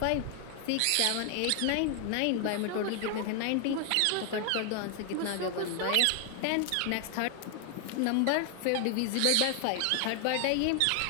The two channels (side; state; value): both; different; correlation 0.00